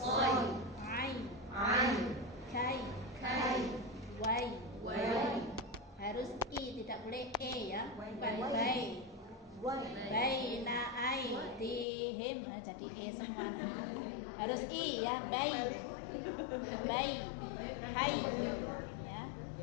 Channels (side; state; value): right; drops out; at 11.9 s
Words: Ai. Kai. Wai. Harus i, tidak boleh e ya. Bukan bai. Baina aidihim, nah jadi e semua. Harus i ya, hai